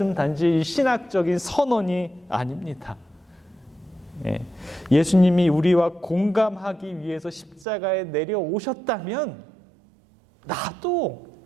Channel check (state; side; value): drops out; left; at 7.7 s